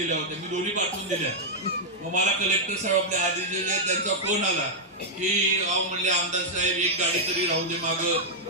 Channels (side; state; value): both; normal; correlation -0.05